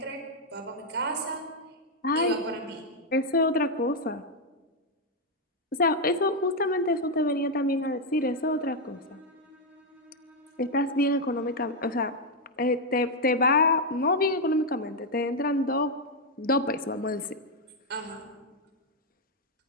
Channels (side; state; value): both; normal; correlation 0.01